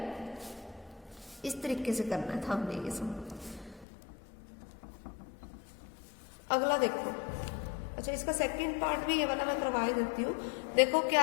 इस तरीके से करना था हमने ये सब। अगला देखो, अच्छा इसका सेकंड पार्ट भी ये वाला मैं करवा देती हूँ। देखो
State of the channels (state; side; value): drops out; right; at 3.9 s